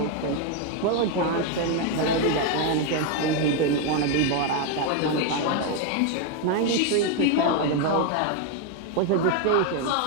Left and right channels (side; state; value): both; different; correlation 0.01